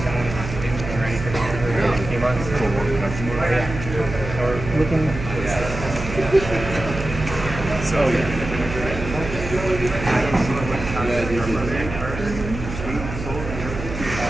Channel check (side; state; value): right; noise; hum, 8 dB below the sound